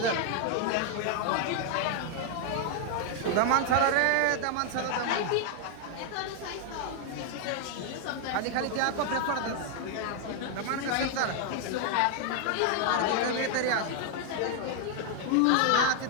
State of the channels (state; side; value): different; both; correlation 0.00